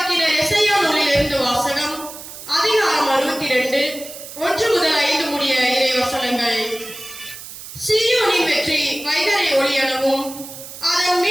எசையா நூலிலிருந்து வாசகம். அதிகாரம் 62, 1 முதல் 5 முடிய இறை வசனங்கள். சீயோனின் வெற்றி வைகறை ஒளியெனவும் அதன்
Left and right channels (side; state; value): right; noise; hiss, 13 dB below the sound